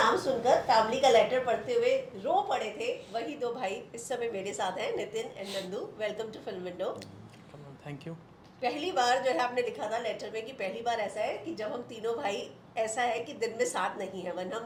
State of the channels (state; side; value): identical; both; correlation 1.00